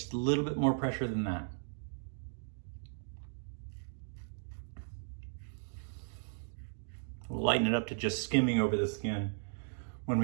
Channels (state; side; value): silent; left; digital silence